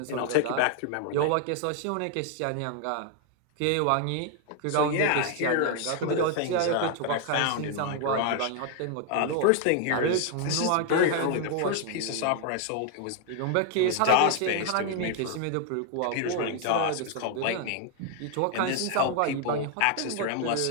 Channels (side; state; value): both; different; correlation 0.00